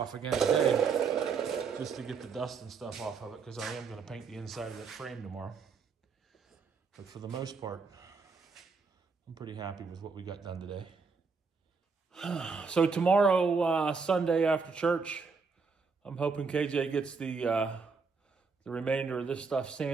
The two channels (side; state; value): left; quieter; 5.1 dB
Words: again today just to get the dust and stuff off of it, because I am going to paint the inside of that frame tomorrow. But for the most part, I'm pretty happy with what we got done today. So tomorrow, Sunday after church, I'm hoping KJ gets the remainder of this stuff